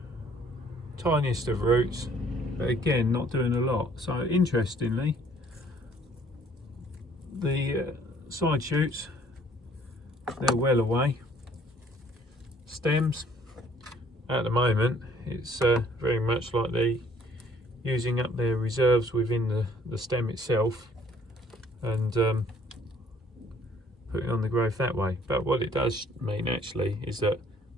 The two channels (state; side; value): normal; both; correlation 0.60